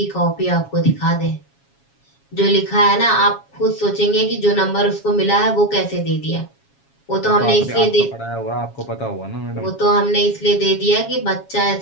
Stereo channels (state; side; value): late; right; 7.3 ms